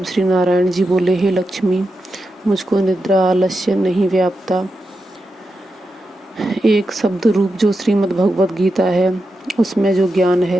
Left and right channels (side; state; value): both; normal; correlation 0.88